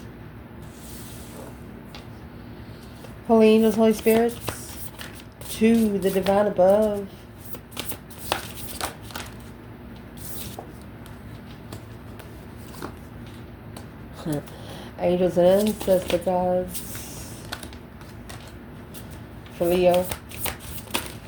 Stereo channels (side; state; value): both; identical; correlation 1.00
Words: Holy angels, Holy spirits, to the divine above. Angels and ancestor gods. For Leo.